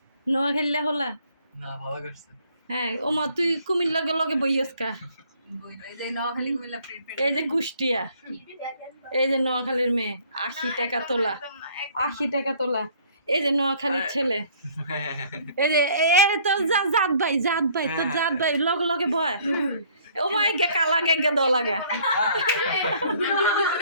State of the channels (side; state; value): both; inverted; correlation -0.59